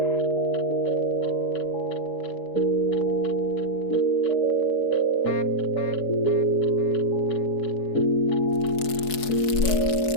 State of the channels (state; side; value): late; right; 4.7 ms